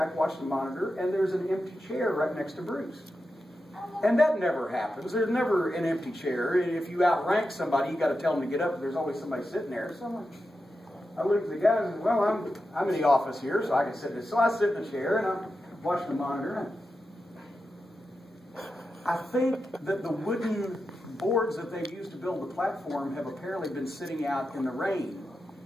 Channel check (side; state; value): both; normal; correlation 0.90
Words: watching the monitor, and there's an empty chair right next to Bruce. And that never happens. There's never an empty chair. If you outrank somebody, you got to tell them to get up, but there's always somebody sitting there. So I look at the guys and say, well, I'm in the office here, so I can sit there. So I sit in the chair, and I'm watching the monitor. I think that the wooden boards that they've used to build the platform have apparently been sitting out in the rain,